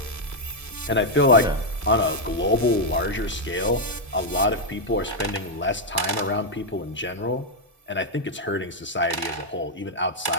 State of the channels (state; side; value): normal; both; correlation -0.02